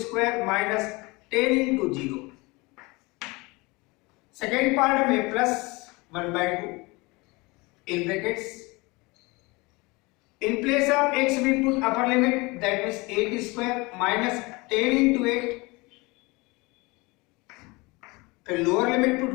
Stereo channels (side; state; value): right; quieter; 24.8 dB